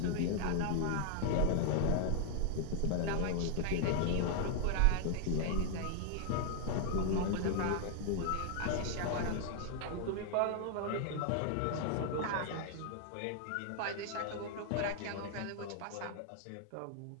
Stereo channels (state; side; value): different; both; correlation 0.00